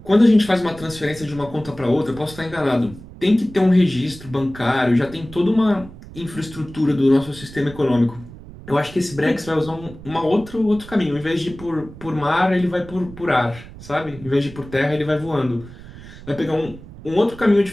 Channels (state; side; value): noise; right; rumble, 17 dB below the sound